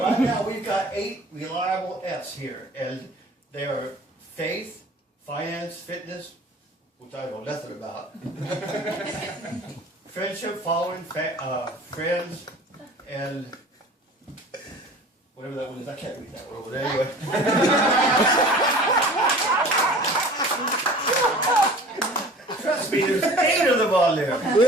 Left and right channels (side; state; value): both; normal; correlation 0.44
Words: right now we've got 8 reliable F's here, and they are faith, finance, fitness, which I know nothing about, friendship, following, friends, and whatever that one is. I can't read that one, but anyway. Trust me, there's 8 of them on there.